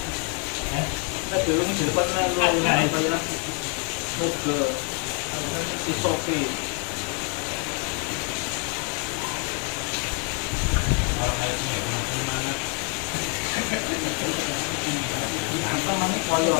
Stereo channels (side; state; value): right; quieter; 36.1 dB